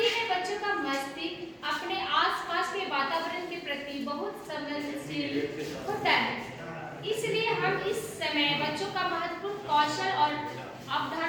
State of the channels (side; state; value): both; identical; correlation 1.00